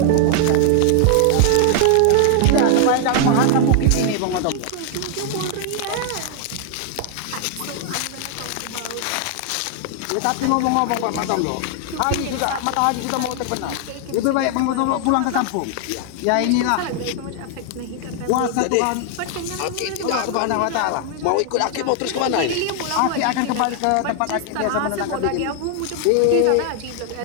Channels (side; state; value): both; different; correlation 0.00